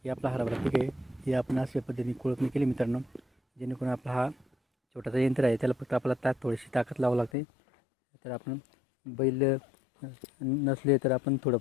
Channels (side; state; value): right; drops out; at 7.3 s